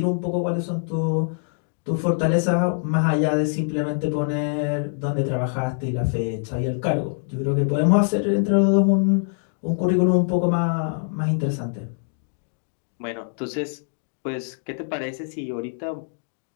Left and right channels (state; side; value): silent; right; digital silence